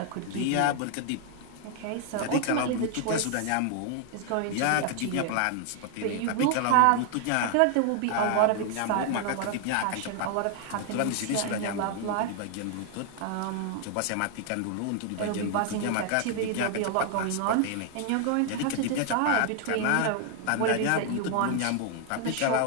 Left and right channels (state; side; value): different; both; correlation 0.00